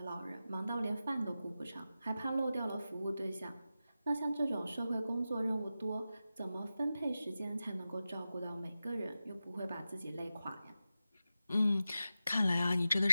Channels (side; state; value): both; inverted; correlation -0.93